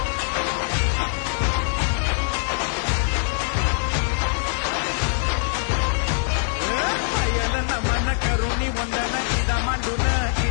नमन करुणी वंदन इदा मांडून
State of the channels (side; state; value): right; silent; digital silence